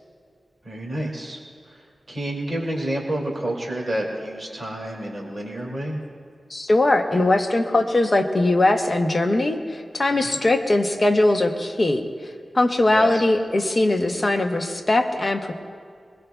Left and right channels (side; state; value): both; normal; correlation 0.95